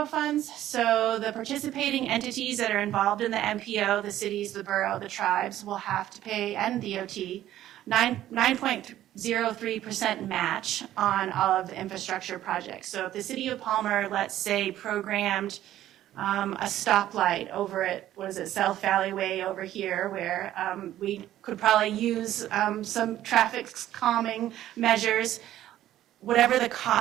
funds. So the participating entities that are involved in the MPO, the cities, the borough, the tribes, will have to pay, and DOT, 9.03% match on all of the infrastructure projects. So if the city of Palmer, let's say, programmed a stoplight over at, what is it, South Valley Way over here, where we could probably use some traffic calming measures, whatever the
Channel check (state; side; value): quieter; left; 13.0 dB